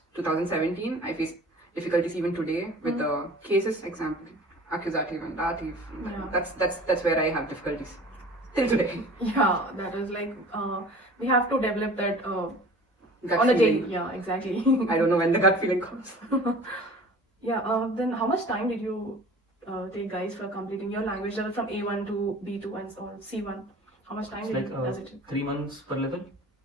2017. I face difficulties even today with the cases, example, accusative and dative. Yeah. That's where I have difficulties till today. Yeah, that is like we have to develop that Gut on a daily. feeling. Yeah, exactly. I don't know when the gut feeling comes. Yeah. Then how much time did you take, guys, for completing your language level from A1 to B2 and so on, C1? How much time It's like does it take? 3 months per level.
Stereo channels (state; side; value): normal; both; correlation 0.44